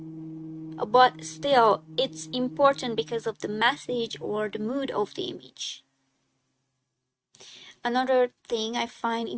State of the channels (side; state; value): both; identical; correlation 1.00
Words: but still, it's important because of the message or the mood of the image. Another thing I find